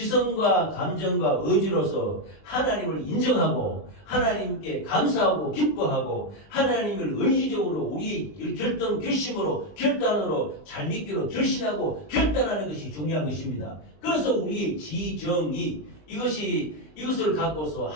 감정과 의지로서 하나님을 인정하고 하나님께 감사하고 기뻐하고 하나님을 의지적으로 우리 결심으로 결단으로 잘 믿기로 결심하고 결단하는 것이 중요한 것입니다. 그래서 우리의 지정이 이것을 갖고서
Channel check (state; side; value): late; right; 20 ms